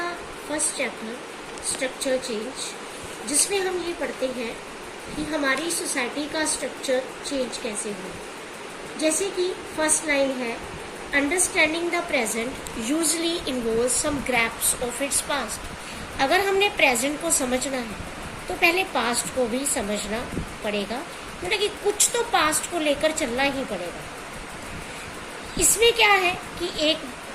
first chapter structure change, जिसमें हम ये पढ़ते हैं कि हमारी सोसाइटी का स्ट्रक्चर चेंज कैसे हुआ। जैसे कि फर्स्ट लाइन है, understanding the present usually involve some grasps of its past. अगर हमने प्रेजेंट को समझना है तो पहले पास्ट को भी समझना पड़ेगा, मतलब कि कुछ तो पास्ट को लेकर चलना ही पड़ेगा। इसमें क्या है कि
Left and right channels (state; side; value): identical; both; correlation 1.00